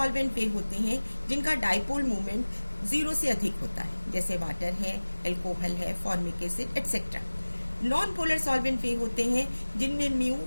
वे होते हैं जिनका डाइपोल मूवमेंट 0 से अधिक होता है, जैसे वाटर है, अल्कोहल है, formic acid etcetera. Non polar solvent वे होते हैं जिनमें म्यू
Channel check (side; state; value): both; inverted; correlation -1.00